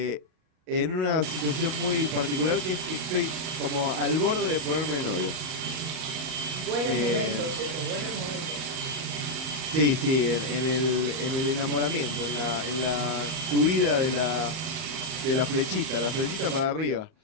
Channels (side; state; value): left; late; 38 ms